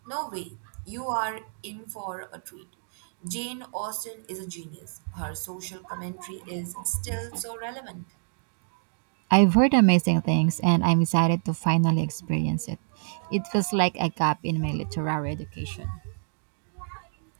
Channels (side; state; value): left; silent; digital silence